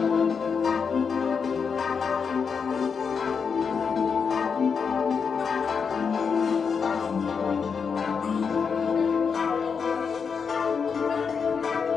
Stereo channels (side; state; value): right; quieter; 6.0 dB